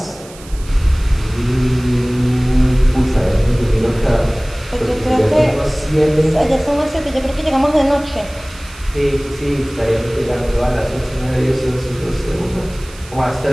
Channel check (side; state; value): right; noise; hiss, 20 dB below the sound